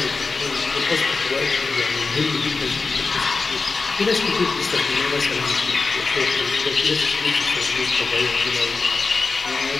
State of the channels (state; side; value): quieter; right; 4.2 dB